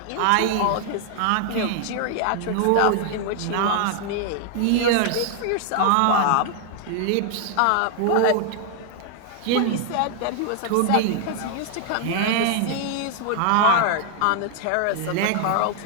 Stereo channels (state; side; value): different; both; correlation 0.00